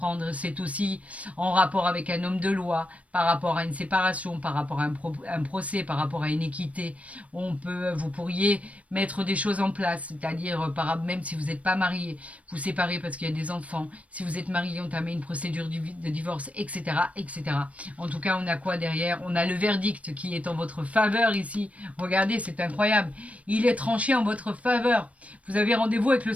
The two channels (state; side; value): late; left; 0.066 ms